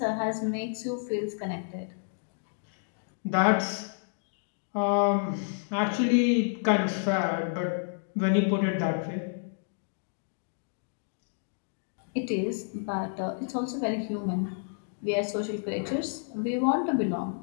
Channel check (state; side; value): silent; right; digital silence